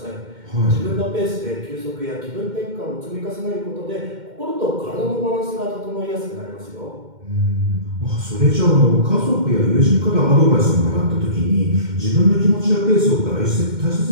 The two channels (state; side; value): late; left; 2.1 ms